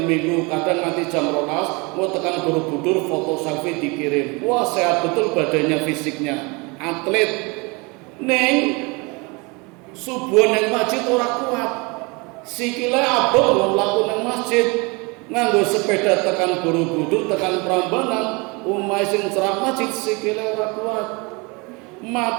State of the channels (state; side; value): quieter; left; 28.1 dB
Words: Minggu kadang nanti jam 12 mau tekan Borobudur foto selfie dikirim. Wah, sehat betul badannya, fisiknya. Atlet. Ning subuh nang masjid ora kuat. Sikile abot mlaku nang masjid. Nganggo sepeda tekan Borobudur, tekan Prambanan, omahe sing cerak masjid sikile ora kuat.